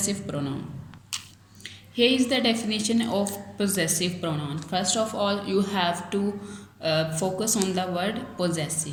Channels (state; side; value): identical; both; correlation 1.00